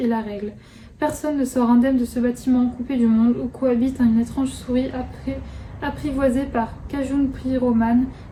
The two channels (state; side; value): identical; both; correlation 1.00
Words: la règle. Personne ne sort indemne de ce bâtiment coupé du monde où cohabite une étrange souris apprivoisée par Cajun Pyroman,